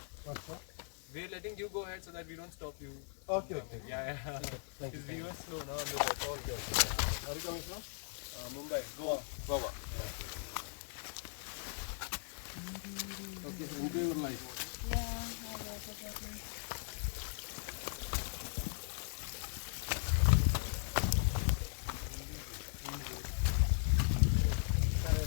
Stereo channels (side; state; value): right; silent; 52 dB below the other